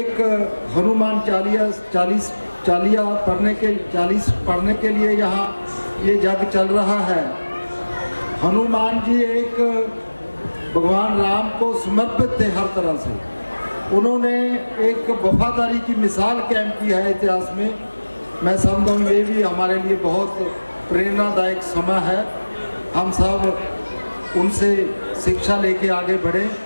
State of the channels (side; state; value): both; inverted; correlation -1.00